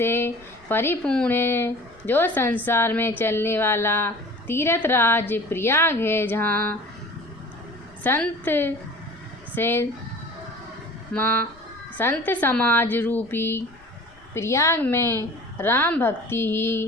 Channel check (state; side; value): noise; left; rumble, 27 dB below the sound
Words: परिपूर्ण है, जो संसार में चलने वाला तीर्थ राज प्रयाग है, जहाँ संत समाज रूपी प्रयाग में राम भक्ति